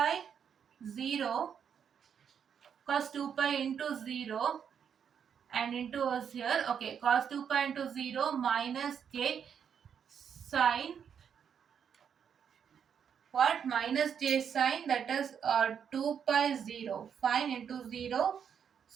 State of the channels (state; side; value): quieter; left; 7.7 dB